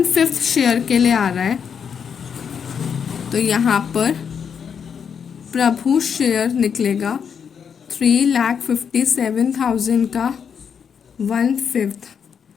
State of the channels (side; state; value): right; quieter; 7.1 dB